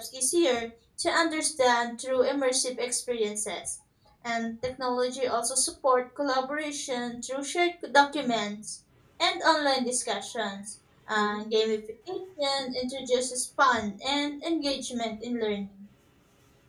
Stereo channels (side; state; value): both; identical; correlation 1.00